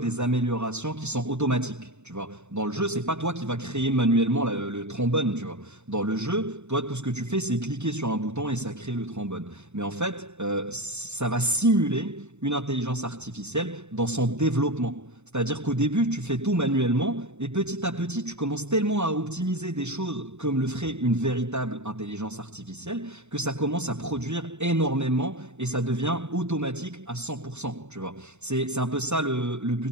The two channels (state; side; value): late; left; 0.82 ms